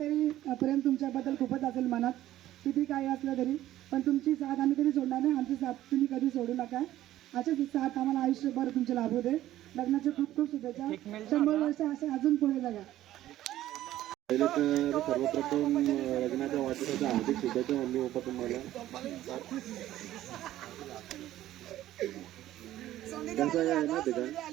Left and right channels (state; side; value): quieter; left; 13.9 dB